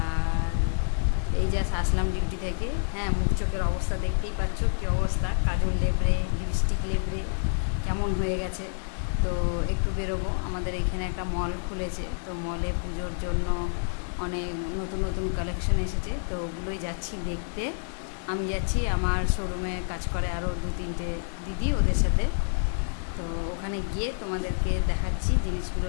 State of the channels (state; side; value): silent; right; 59 dB below the other